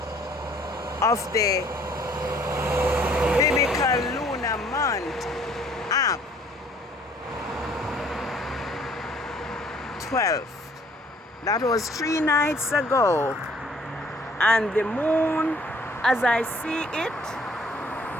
of the biblical lunar month, Ab 12th. That was 3 nights ago, and the moon, as I see it,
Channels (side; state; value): both; normal; correlation 0.58